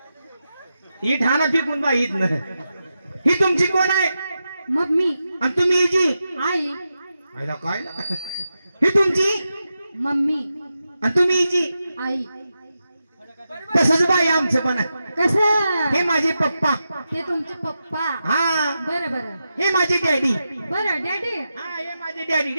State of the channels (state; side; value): inverted; both; correlation -0.89